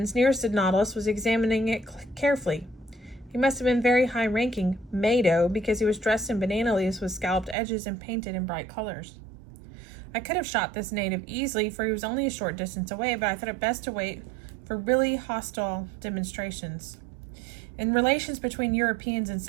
nearest the Nautilus was examining it carefully. He must have been very high-ranking Mado, because he was dressed in banana leaves with scalloped edges and painted in bright colors. I could have shot this native easily, for he was only a short distance away, but I thought it best to wait for really hostile demonstrations. In relations between Europeans and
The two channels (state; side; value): drops out; left; at 7.6 s